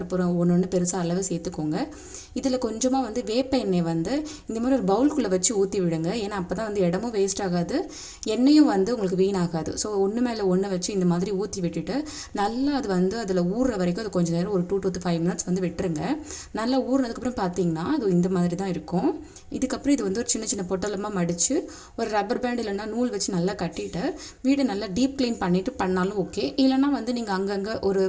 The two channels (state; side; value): identical; both; correlation 1.00